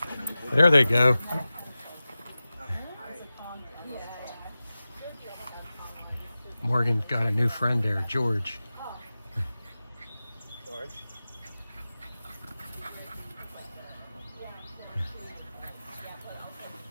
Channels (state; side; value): inverted; both; correlation -0.96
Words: There they go. Morgan's got a new friend there, George.